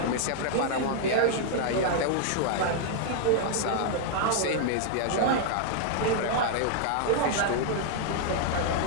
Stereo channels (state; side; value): different; both; correlation -0.01